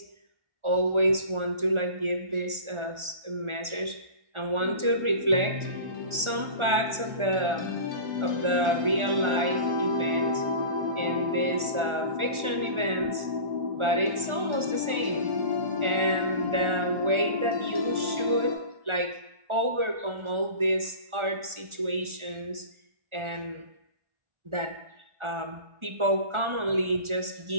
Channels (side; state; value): left; late; 1.4 ms